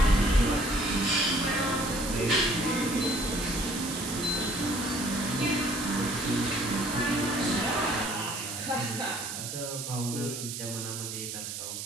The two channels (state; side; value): noise; right; hiss, 6 dB below the sound